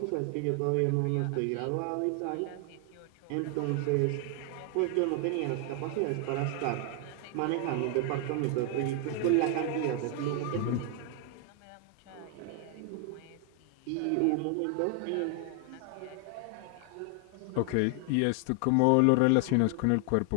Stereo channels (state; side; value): different; both; correlation 0.00